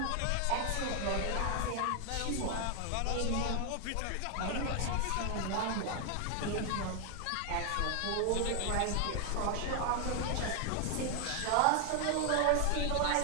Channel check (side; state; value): both; different; correlation 0.00